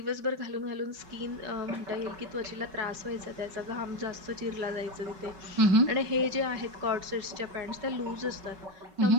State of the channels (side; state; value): left; late; 5.3 ms